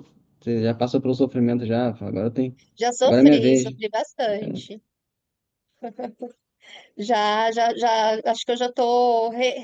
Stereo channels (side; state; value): both; identical; correlation 1.00